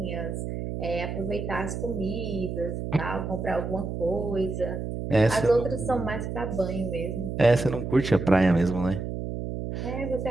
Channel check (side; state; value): right; noise; hum, 5 dB below the sound